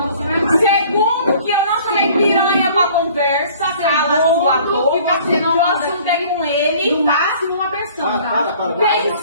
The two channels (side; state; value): both; inverted; correlation -0.52